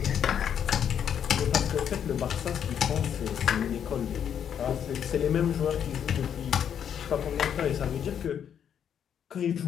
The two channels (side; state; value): right; quieter; 8.6 dB